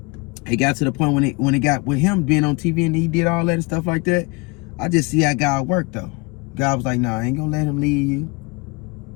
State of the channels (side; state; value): right; quieter; 27.5 dB